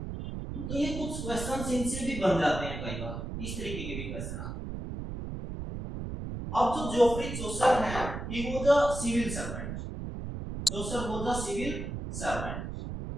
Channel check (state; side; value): noise; right; rumble, 6 dB below the sound